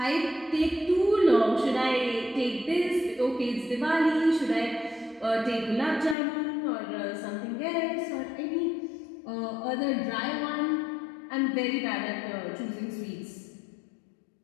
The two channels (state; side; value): drops out; right; at 6.2 s